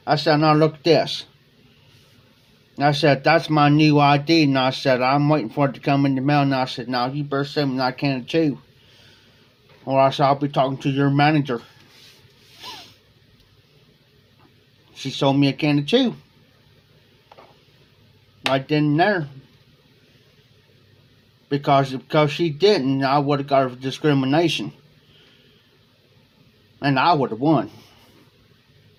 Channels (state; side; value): identical; both; correlation 1.00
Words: I said, now look at this. I said, that's my new ID. And I said, I'm waiting for it to come in the mail. And I said, now you better send me that can of chew. Or else I'll be talking to your manager. She sold me a can of chew. Right then and there. Because she didn't, I would have got discrimination. And I would have won.